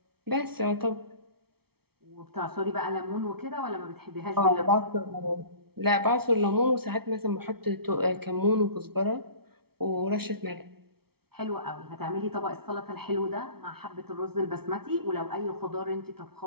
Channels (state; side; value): late; left; 0.95 ms